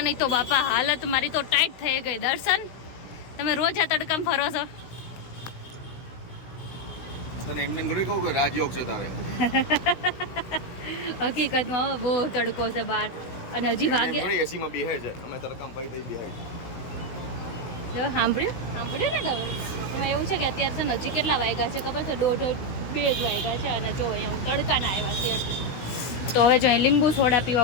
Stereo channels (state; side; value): late; right; 16 ms